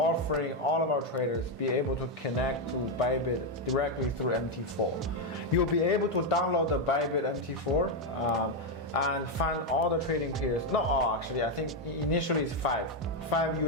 all of our traders be able to connect to Bybit directly through MT4. You'll be able to download the Bybit MT4 and find all the trading pairs. Not all, actually. I think initially it's five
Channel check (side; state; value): both; normal; correlation 0.04